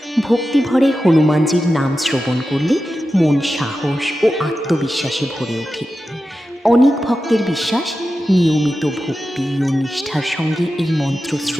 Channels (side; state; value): both; normal; correlation 0.92